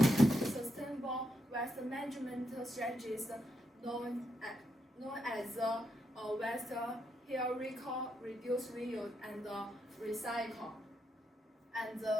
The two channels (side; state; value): both; normal; correlation 0.82